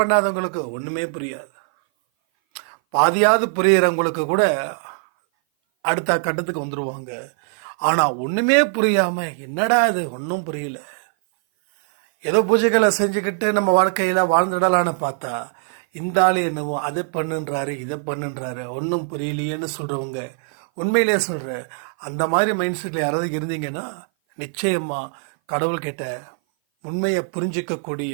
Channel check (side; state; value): left; silent; 58 dB below the other